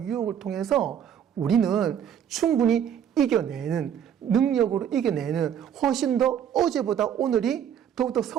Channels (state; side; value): quieter; left; 8.9 dB